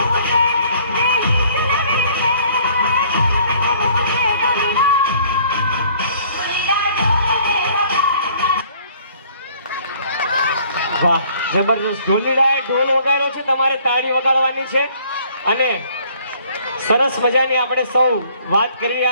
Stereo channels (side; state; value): both; inverted; correlation -0.58